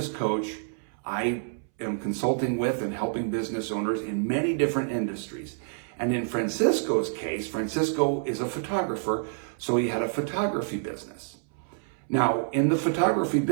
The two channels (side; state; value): left; silent; 59 dB below the other